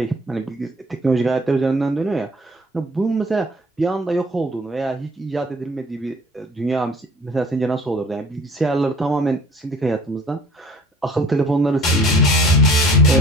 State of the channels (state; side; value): normal; both; correlation 0.52